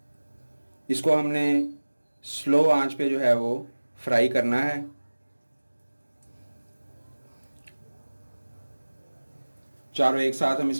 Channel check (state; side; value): inverted; both; correlation -1.00